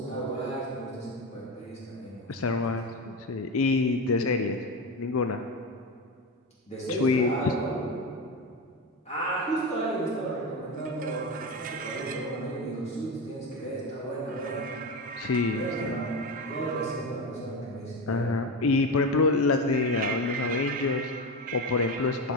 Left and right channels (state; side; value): normal; both; correlation 0.19